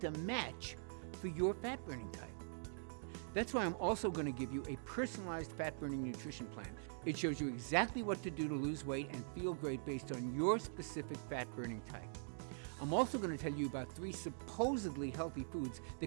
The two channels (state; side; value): silent; left; digital silence